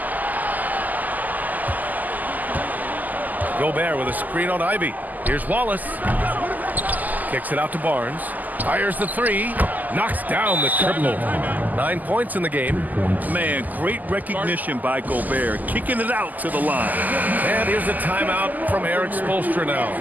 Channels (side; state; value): left; late; 0.082 ms